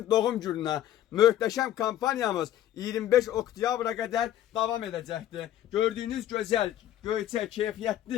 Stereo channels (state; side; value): quieter; right; 12.2 dB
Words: doğum gününə. Möhtəşəm kampanyamız 25 oktyabra qədər davam edəcəkdir. Gördüyünüz gözəl, göyçək,